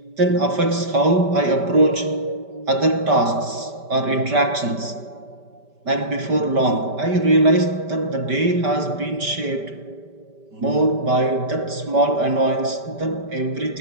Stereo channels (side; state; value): left; late; 5.1 ms